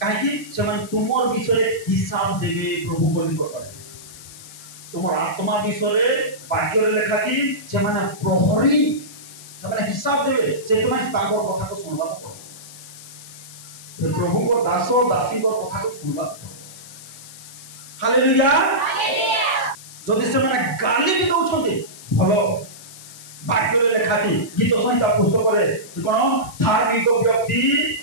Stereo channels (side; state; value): left; noise; hiss, 17 dB below the sound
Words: काहे कि से माने तुमर विषय हिसाब देबे प्रभु को निकट तुमर आत्मा विषय वाक्य रे लेखा छी से माने प्रहरी से माने हिसाब देबे सेतमानी ताकर कथा को सुनबा प्रभु को दास दासी को कथा को सुनबा हालेलुया हालेलुया जदि से माने गाली भी दउछते भलो वाक्य रे लेखा छी गीत संहिता पुस्तक रे कोन धार्मिक व्यक्ति